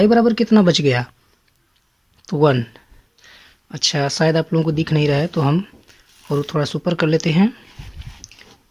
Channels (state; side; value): identical; both; correlation 1.00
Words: बराबर कितना बच गया, तो 1। अच्छा, शायद आप लोगों को दिख नहीं रहा है तो हम और थोड़ा सुपर कर लेते हैं।